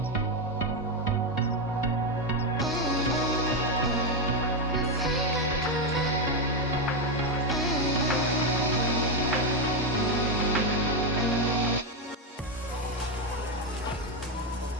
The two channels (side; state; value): both; normal; correlation 0.07